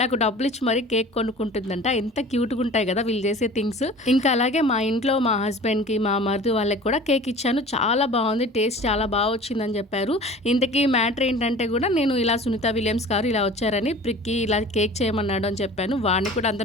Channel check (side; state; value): both; normal; correlation 0.42